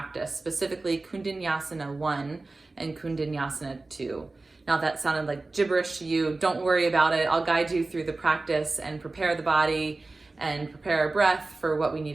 specifically Kundinayasana 1 and Kundinayasana 2. Now if that sounded like gibberish to you, don't worry about it. I'll guide you through the practice and prepare the body and prepare our breath for what we need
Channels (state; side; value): quieter; left; 3.3 dB